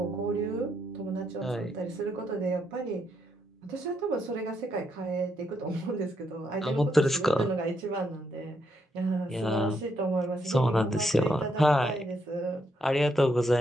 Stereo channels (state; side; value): normal; both; correlation 0.77